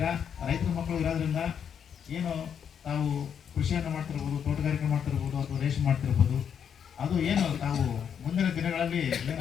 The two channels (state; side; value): quieter; right; 7.9 dB